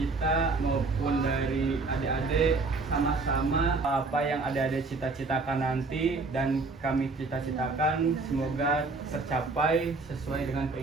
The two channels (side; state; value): left; quieter; 3.8 dB